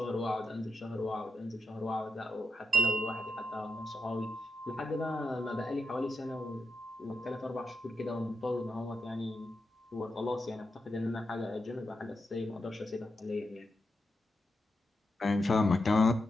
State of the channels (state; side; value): normal; both; correlation 0.86